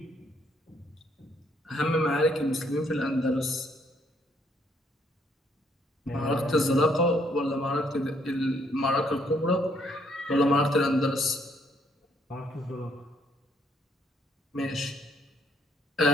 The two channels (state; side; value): normal; both; correlation 0.69